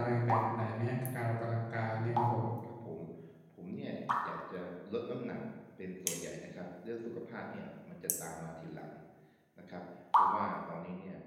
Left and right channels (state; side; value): identical; both; correlation 1.00